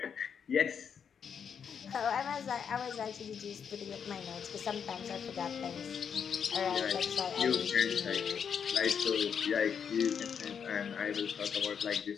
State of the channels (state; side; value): quieter; right; 7.2 dB